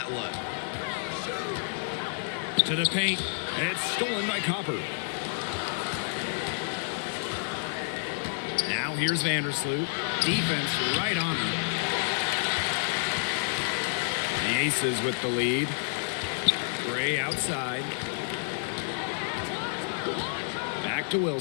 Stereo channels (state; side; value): silent; right; digital silence